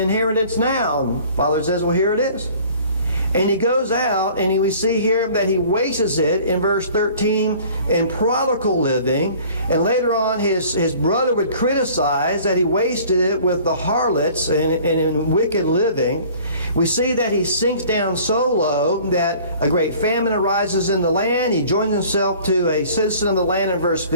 now. And Father says, well, here it is. And he goes out, and we see here that he wastes it in verse 13 in prodigal living. And later on, his brother would criticize that he wasted it with the harlots and in wicked living. We see that he sinks down so low that a great famine arises in the land. He joins himself to a citizen of the land in verse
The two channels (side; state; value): both; inverted; correlation -0.50